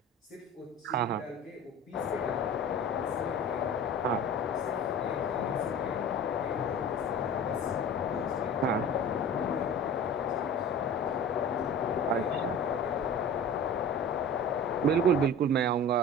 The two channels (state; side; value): normal; both; correlation 0.37